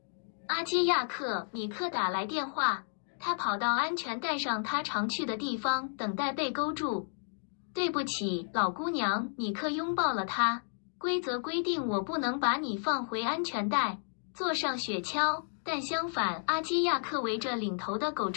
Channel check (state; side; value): silent; right; digital silence